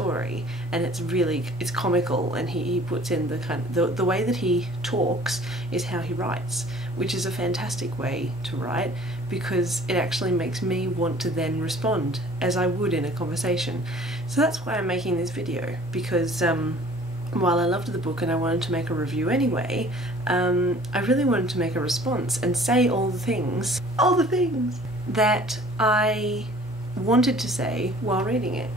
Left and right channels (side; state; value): both; normal; correlation 0.50